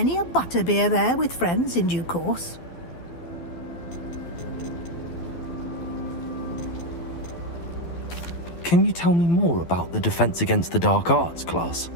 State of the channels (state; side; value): late; right; 12 ms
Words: a butterbeer there with friends in due course. Can you tell me more about the Defense Against the Dark Arts class?